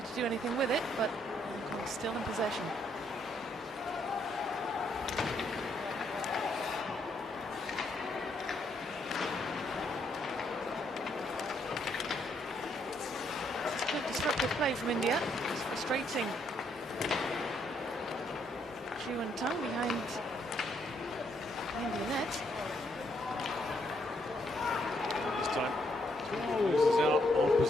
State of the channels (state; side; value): normal; both; correlation 0.73